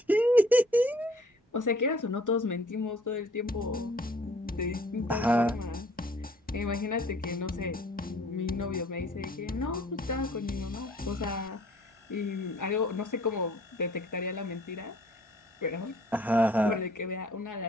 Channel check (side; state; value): both; normal; correlation 0.56